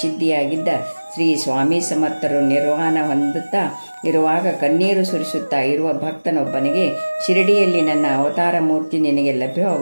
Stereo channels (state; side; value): inverted; both; correlation -1.00